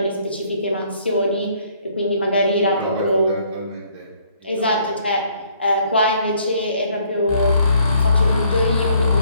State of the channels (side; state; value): both; inverted; correlation -0.64